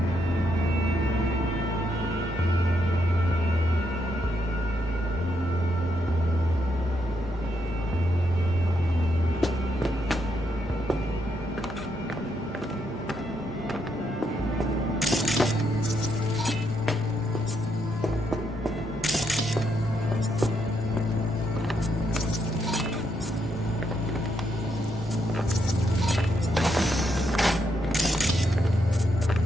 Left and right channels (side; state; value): both; normal; correlation 0.78